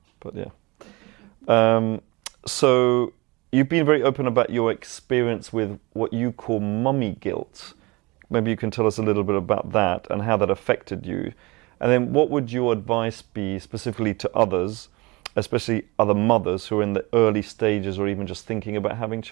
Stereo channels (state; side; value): quieter; left; 24.3 dB